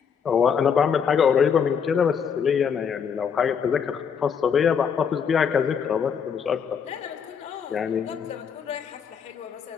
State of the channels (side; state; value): right; quieter; 7.0 dB